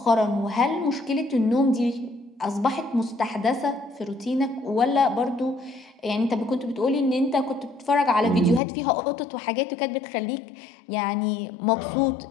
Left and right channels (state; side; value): drops out; right; at 8.6 s